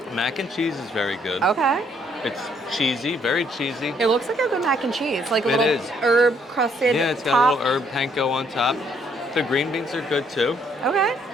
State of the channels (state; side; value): normal; both; correlation 0.68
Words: Mac and cheese is very good. Okay. It's cheesy, very cheesy. It looks like a good mac and cheese, like a It little is. herb crusted Yeah, it's got top. a little herb panko on top. The green beans are good too. Okay.